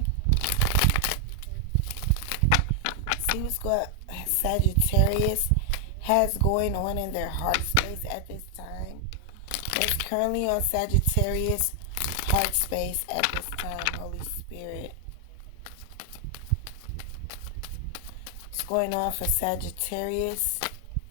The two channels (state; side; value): different; both; correlation 0.00